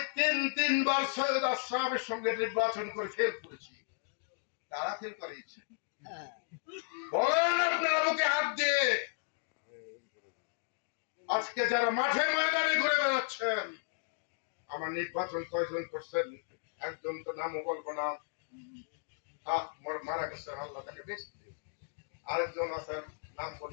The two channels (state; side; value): silent; right; digital silence